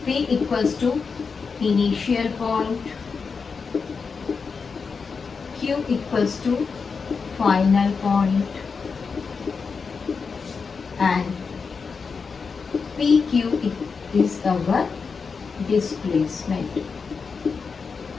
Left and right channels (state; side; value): quieter; right; 5.2 dB